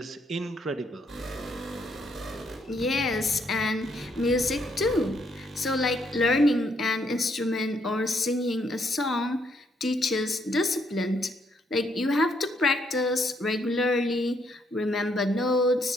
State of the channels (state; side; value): normal; both; correlation 0.72